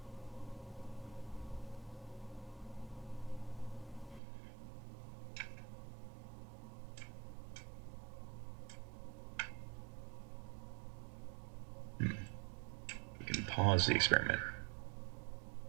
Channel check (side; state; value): left; drops out; at 4.2 s